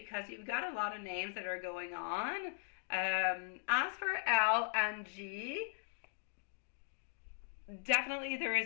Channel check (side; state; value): right; silent; digital silence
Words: you've got a lot of names that are going on. As for L and G, definitely there